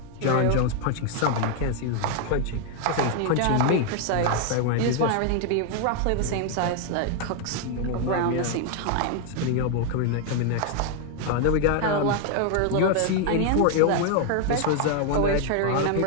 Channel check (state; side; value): different; both; correlation 0.00